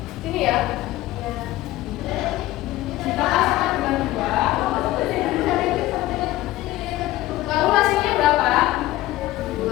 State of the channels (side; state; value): right; quieter; 16.5 dB